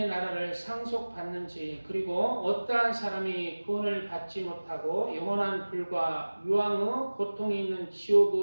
나라를 상속받는지, 그리고 어떠한 사람이 구원을 받지 못하고 영원한 불과 유황의 고통이 있는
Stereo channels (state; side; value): inverted; both; correlation -1.00